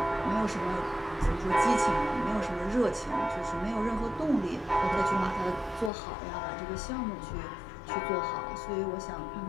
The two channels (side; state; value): right; drops out; at 5.9 s